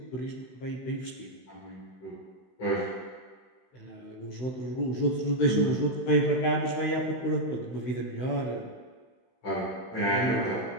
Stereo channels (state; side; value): late; right; 16 ms